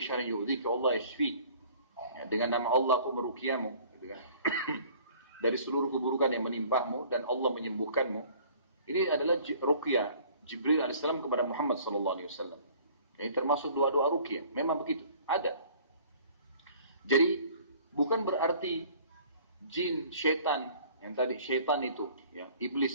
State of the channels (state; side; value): inverted; both; correlation -0.52